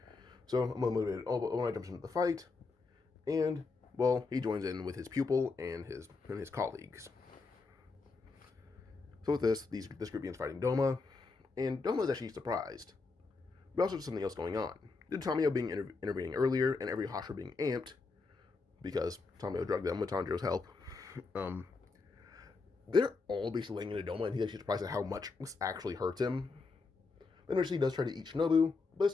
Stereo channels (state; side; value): quieter; right; 4.1 dB